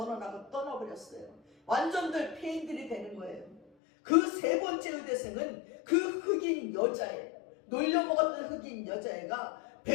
떠나버렸어요. 완전들 폐인들이 되는 거예요. 그 세 번째 의대생은 그 흑인 여자애, 놀려먹었던 흑인 여자애가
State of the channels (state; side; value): drops out; right; at 3.6 s